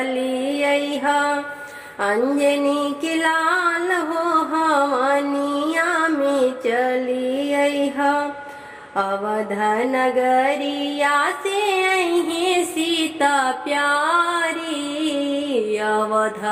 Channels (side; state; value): both; identical; correlation 1.00